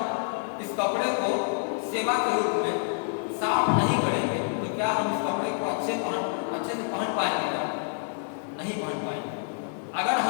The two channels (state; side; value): silent; right; 59 dB below the other